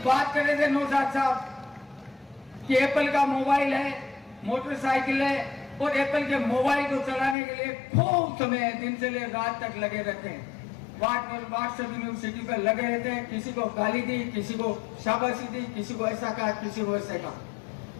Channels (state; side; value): drops out; right; at 7.4 s